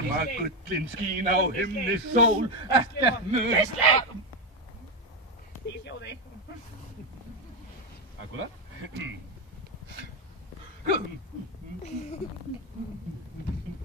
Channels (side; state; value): both; normal; correlation 0.10